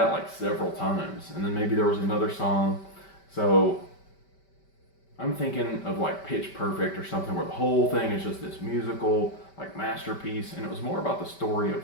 like several times. And then maybe there was another song. So I'm thinking of like Pitch Perfect or something where the whole thing is just this musical like masterpiece, and it was more about the story of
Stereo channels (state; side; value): late; right; 5.2 ms